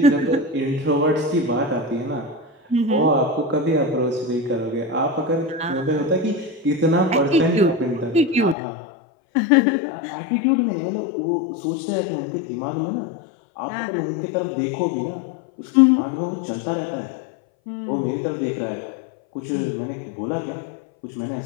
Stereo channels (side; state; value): right; drops out; at 8.6 s